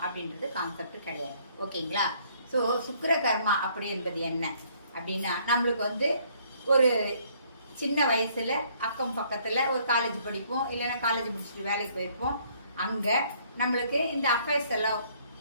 அப்படின்றது கான்செப்ட் கிடையாது. ஓகேங்களா? ஸோ சுக்கிர கர்மா அப்படி என்பது என்ன அப்படின்னா, நம்மளுக்கு ஒரு சின்ன வயசுல அக்கம் பக்கத்தில் ஒரு காலேஜ் படிப்போம், இல்லைன்னா காலேஜ் முடிச்சுட்டு வேலைக்கு போயிருப்போம். அங்கே நம்மளுக்கு இந்த அஃபேர்ஸ் எல்லாம்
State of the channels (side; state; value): both; inverted; correlation -0.64